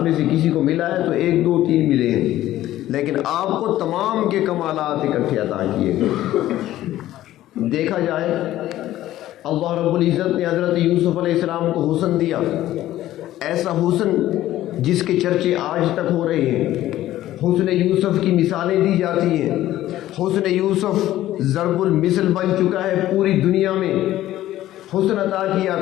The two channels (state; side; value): quieter; right; 14.2 dB